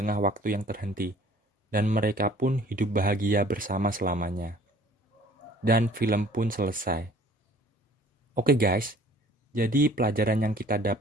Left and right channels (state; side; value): normal; both; correlation 0.52